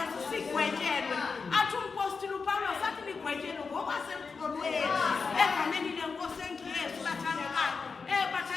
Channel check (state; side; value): quieter; right; 4.9 dB